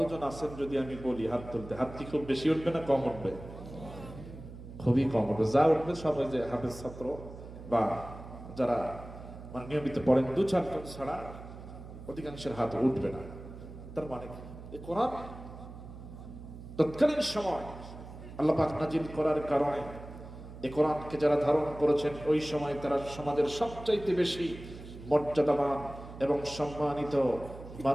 আছেন? যদি আমি বলি হাত তুলতে, হাত কি খুব বেশি উঠবে না কম উঠবে? খুবই কম উঠবে। যা উঠবে সবাই যে হাফেজ ছাত্র বা যারা মানে নিয়মিত পড়েন, ২-৪ জন ছাড়া অধিকাংশের হাত উঠবে না। তার মানে এই কোরআন তৎকালীন সময় আল্লাহ পাক নাজিল করার কারণে এই কোরআনকে যারা ধারণ করেছেন ওই সময় তারা সমাজের সবচাইতে বেশি মর্যাদাবান এবং সম্মানিত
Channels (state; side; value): noise; right; hum, 14 dB below the sound